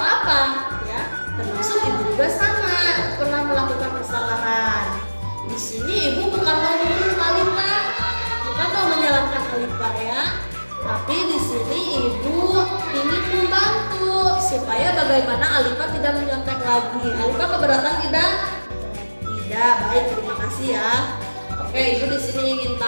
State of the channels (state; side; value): inverted; both; correlation -1.00